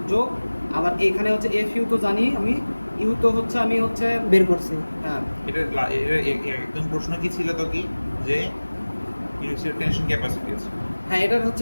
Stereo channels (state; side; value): inverted; both; correlation -1.00